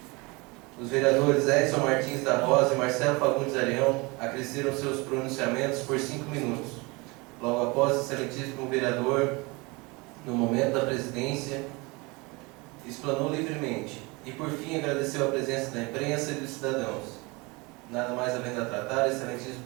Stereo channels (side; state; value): left; quieter; 26.1 dB